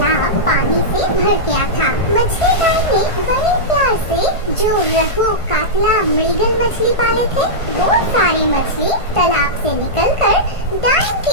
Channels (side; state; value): right; late; 1.5 ms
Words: पानी से भर गया था। मछली डायन ने बड़े प्यार से जो रहू, कातला, मृगल मछली पाले थे, वो सारी मछली तालाब से निकलकर डायन